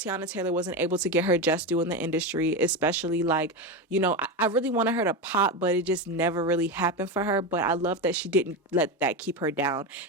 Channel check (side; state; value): both; normal; correlation 0.16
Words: Taylor wasn't able to get her just due in the industry, especially like, you know, I really wanted her to pop, but it just never really happened for her. But I love that she didn't let that keep her down.